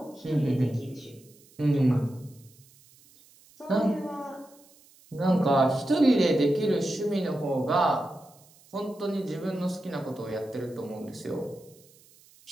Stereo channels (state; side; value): noise; right; hiss, 27 dB below the sound